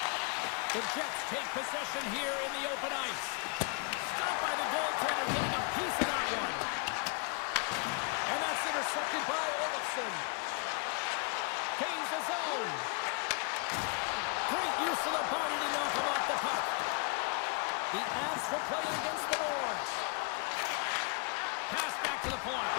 The Jets take possession here in the open ice. Stopped by the goaltender, getting a piece of that one. And that's intercepted by Olofsson. Gains the zone. Great use of the body to knock him off the puck. The Avs will play it against the boards. Pass back to the point.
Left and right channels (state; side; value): quieter; right; 34.9 dB